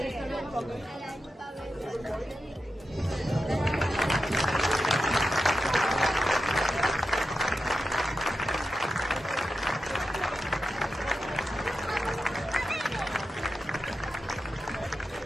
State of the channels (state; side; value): normal; both; correlation 0.89